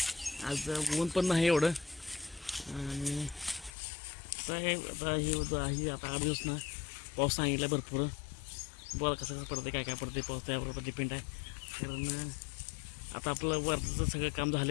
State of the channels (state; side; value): drops out; right; at 3.7 s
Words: आज ऊन पण नाही एवढं आणि आता ही आता 8 दिवस ना पाऊस सांगितला भरपूर. बरं कसं पडते काय पडते पाऊस त्याबरोबर डिपेंड आहे. कारण आता आपलं वरचं सगळं काम